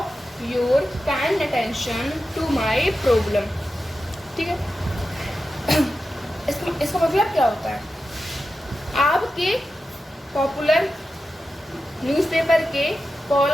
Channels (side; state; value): both; normal; correlation 0.91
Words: your kind attention to my problem, ठीक है। इसका मतलब क्या होता है, आपके पॉपुलर न्यूज़पेपर के